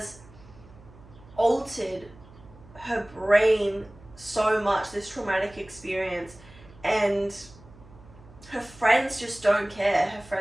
altered her brain so much, this traumatic experience, and her friends just don't care. Her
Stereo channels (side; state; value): right; noise; hum, 22 dB below the sound